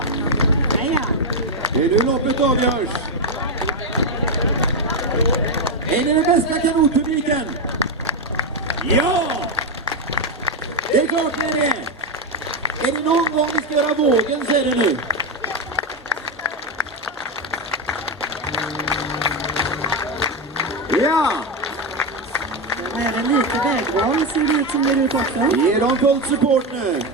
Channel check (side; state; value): both; normal; correlation 0.08